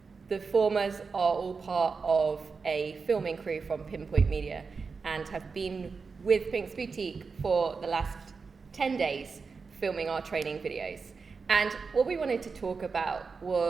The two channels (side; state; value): left; quieter; 4.9 dB